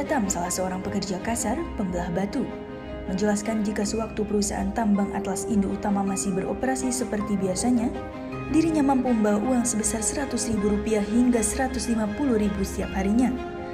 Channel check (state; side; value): identical; both; correlation 1.00